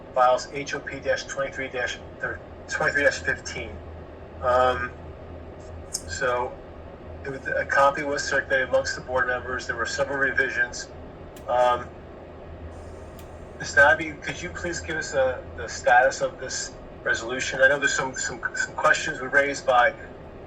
files HOP-23-15. So a copy was circulated amongst the board members. There were several revisions. Ms. Nabby, could you please give us the status of this resolution? I know there's some questions were raised by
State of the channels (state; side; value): identical; both; correlation 1.00